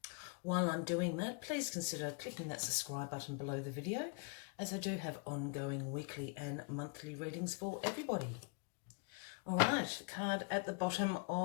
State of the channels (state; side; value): quieter; right; 37.3 dB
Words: While I'm doing that, please consider clicking that subscribe button below the video, as I do have ongoing weekly and monthly readings for everybody. All right, card at the bottom